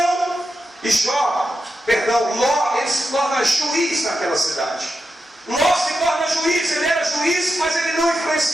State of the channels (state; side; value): normal; both; correlation 0.89